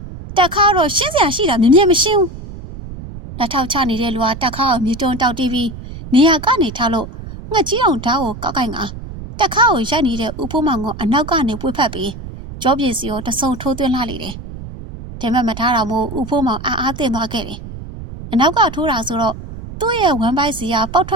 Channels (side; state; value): right; noise; rumble, 12 dB below the sound